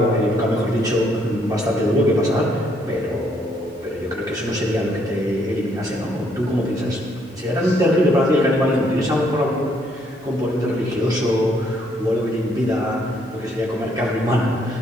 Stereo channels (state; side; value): normal; both; correlation 0.70